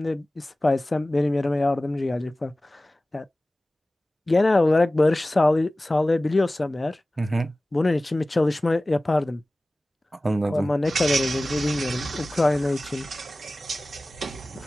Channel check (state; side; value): normal; both; correlation 0.97